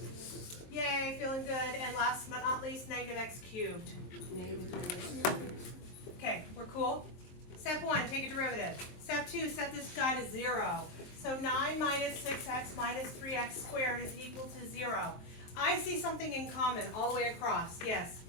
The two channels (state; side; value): late; right; 23 ms